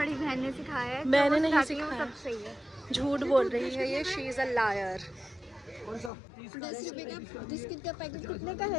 बहन ने सिखाया है। मैंने नहीं सिखाया, सब सही है। झूठ बोल रही है ये, शी इज़ अ लायर। 10 रुपये का बिस्किट का पैकेट कितने का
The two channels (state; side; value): drops out; right; at 6.1 s